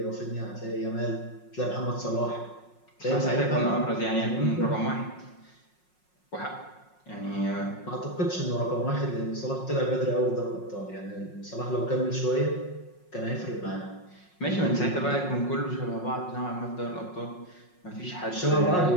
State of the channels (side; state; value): right; late; 5.5 ms